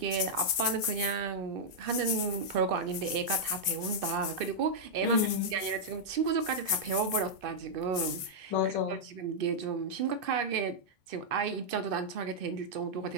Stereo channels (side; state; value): left; late; 1.9 ms